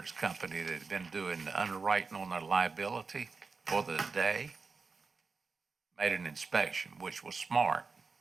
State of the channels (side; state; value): left; quieter; 4.5 dB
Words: company that had been doing the underwriting on their liability for the day made an inspection, which was smart.